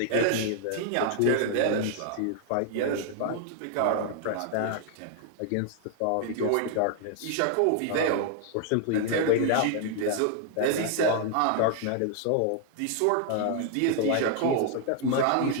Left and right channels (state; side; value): different; both; correlation 0.00